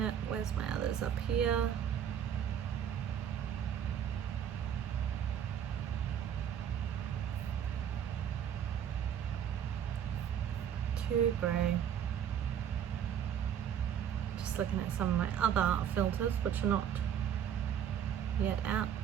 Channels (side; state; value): left; quieter; 9.1 dB